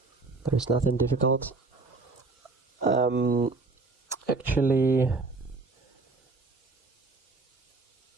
There is nothing difficult. Actually,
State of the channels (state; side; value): quieter; left; 3.8 dB